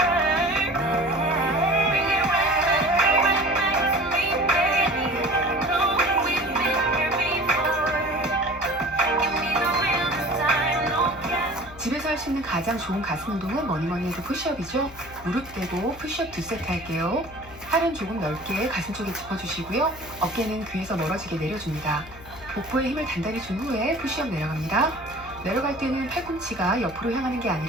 Bring it right back to me, baby. Know we've been here before. Give me the real this time, no gas. 집에서 할 수 있는 가장 좋은 가슴 운동은 뭐니뭐니 해도 푸시업이죠. 무릎 대고 푸시업 2세트 할게요. 팔은 조금 넓게 가슴 쪽에 짚어주시고요. 어깨는 귀에서 멀어지게 내려줍니다. 복부에 힘을 단단히 준 후에 푸시업 내려갑니다. 내려갈 때는 팔꿈치가 옆으로 향하는 게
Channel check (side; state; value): left; noise; hum, 19 dB below the sound